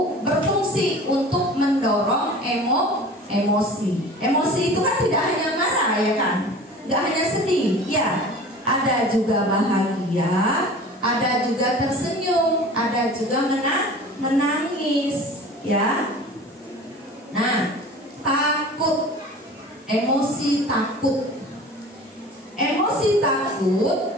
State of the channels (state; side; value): normal; both; correlation 0.40